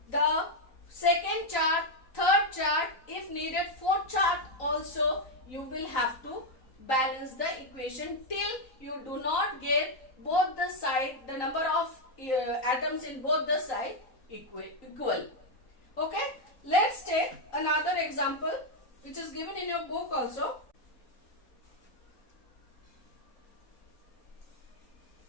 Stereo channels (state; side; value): late; right; 3.9 ms